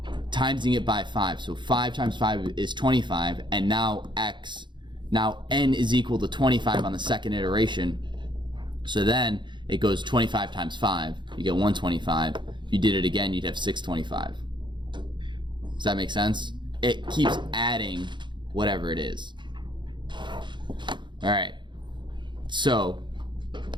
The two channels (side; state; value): left; late; 0.23 ms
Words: timesing it by 5. So 5 times 5 is 25, and now n is equal to 25 on the second iteration. So then it goes 25 times 5. You get 125. If you did it again, you'd have 625. Does that make sense? It keeps adding whatever it is. All right. So,